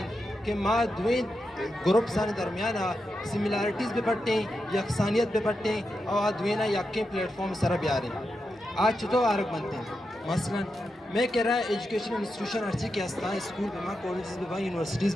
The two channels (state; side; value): normal; both; correlation 0.87